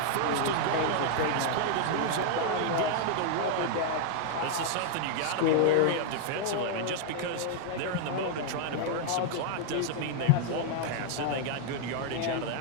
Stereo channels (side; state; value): both; different; correlation 0.00